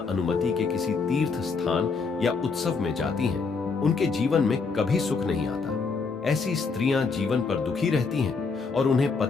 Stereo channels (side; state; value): right; quieter; 4.8 dB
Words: अनुमति के किसी तीर्थ स्थान या उत्सव में जाती हैं, उनके जीवन में कभी सुख नहीं आता। ऐसी स्त्रियां जीवन पर दुखी रहती हैं और उन्हें